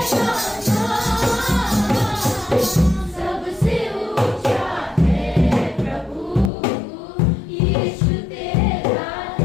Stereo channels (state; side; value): drops out; right; at 6.5 s